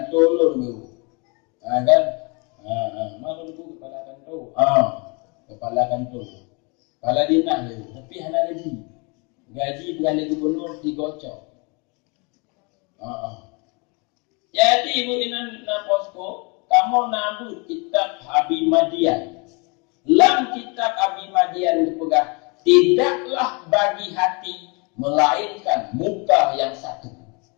lu dulu. Kan? Mana dulu kepala kanto? Kepala kanto. Kepala dinah dulu. Tapi hana gaji. Gaji beralih gubernur 3 ocok. Jadi ibu inan na posko, kamu nabut kitab Abi Madian. Dalam kitab Abi Madian dipegang, tidaklah bagi hati melainkan muka yang satu.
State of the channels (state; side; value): quieter; right; 31.1 dB